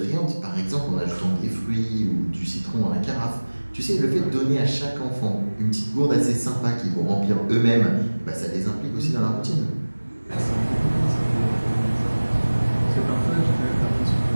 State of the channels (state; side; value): inverted; both; correlation -1.00